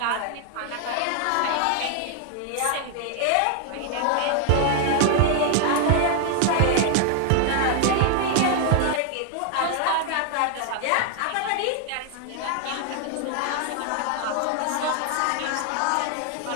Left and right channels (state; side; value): different; both; correlation 0.00